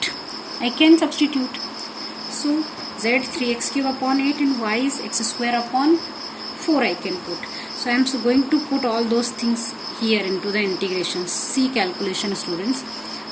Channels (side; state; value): both; identical; correlation 1.00